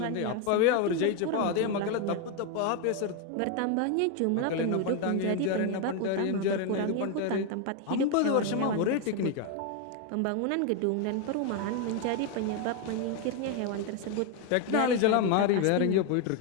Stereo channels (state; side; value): different; both; correlation 0.01